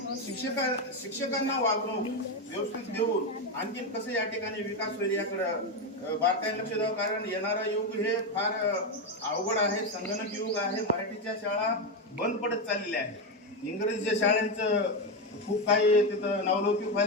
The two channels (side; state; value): both; normal; correlation 0.10